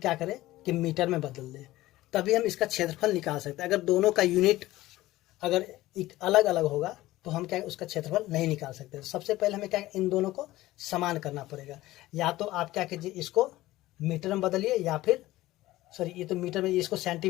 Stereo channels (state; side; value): quieter; right; 16.8 dB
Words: करें कि मीटर में बदल दे, तभी हम इसका क्षेत्रफल निकाल सकते हैं। अगर दोनों का यूनिट अगर अलग अलग होगा तो हम क्या उसका क्षेत्रफल नहीं निकाल सकते। सबसे पहले हमें क्या इन दोनों को समान करना पड़ेगा, या तो आप क्या कीजिए इसको मीटर में बदलिए, या फिर ये तो मीटर में, इसको